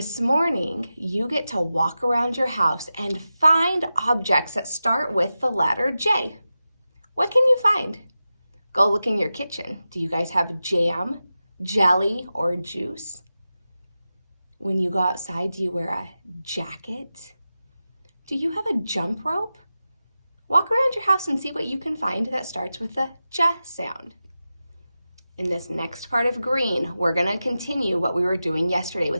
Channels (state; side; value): inverted; both; correlation -0.93